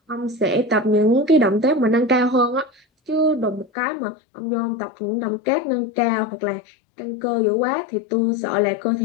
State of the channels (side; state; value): right; drops out; at 3.7 s